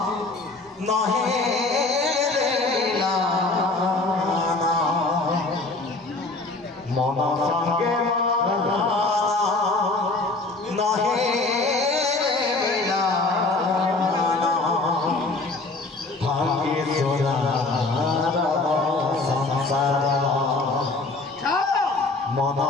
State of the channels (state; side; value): quieter; right; 3.3 dB